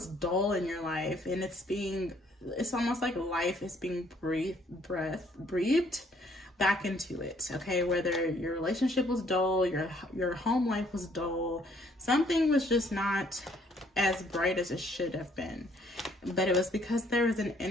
dull in your life, and it's almost like life is being breathed back into it, okay? Whether your relationship was dull, your home life was dull, something was just not as bright as it should have been. But it was because there was an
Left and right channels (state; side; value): normal; both; correlation 0.64